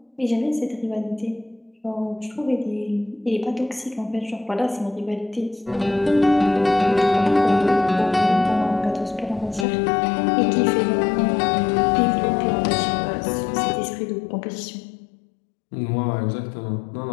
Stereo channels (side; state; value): right; drops out; at 9.7 s